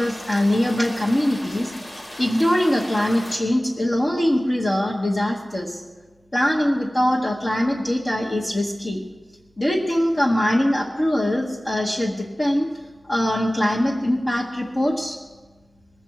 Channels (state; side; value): normal; both; correlation 0.97